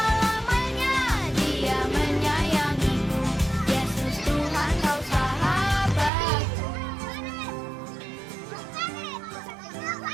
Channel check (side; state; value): left; drops out; at 6.1 s